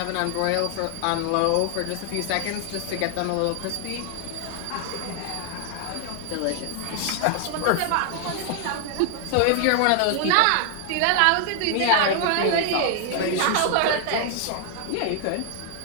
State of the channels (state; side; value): different; both; correlation 0.00